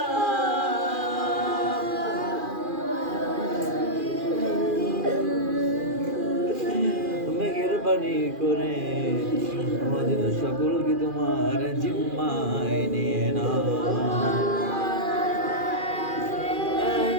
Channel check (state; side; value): late; left; 2.4 ms